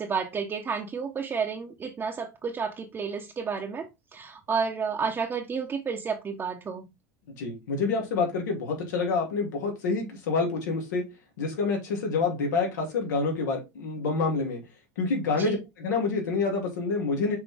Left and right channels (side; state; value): both; normal; correlation 0.15